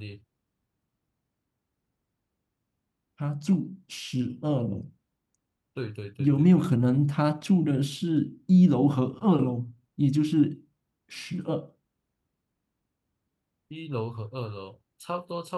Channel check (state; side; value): identical; both; correlation 1.00